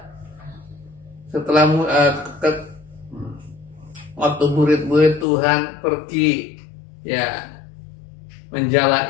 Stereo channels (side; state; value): right; drops out; at 5.2 s